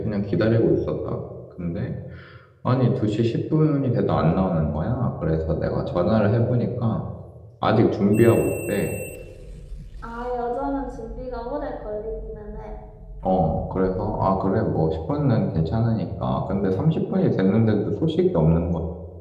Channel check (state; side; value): identical; both; correlation 1.00